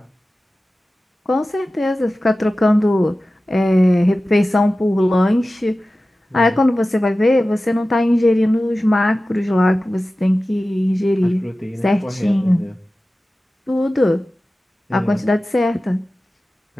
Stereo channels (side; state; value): both; normal; correlation 0.96